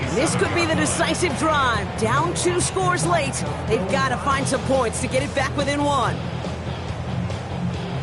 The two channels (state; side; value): identical; both; correlation 1.00